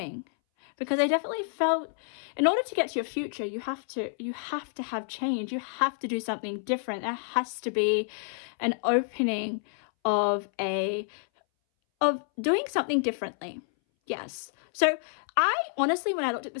Because I definitely felt in order to get to your future, you have to have change. You have to do something different. There has to be an opening of doing something differently. Yes. So I honestly, when I looked at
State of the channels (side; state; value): right; silent; 59 dB below the other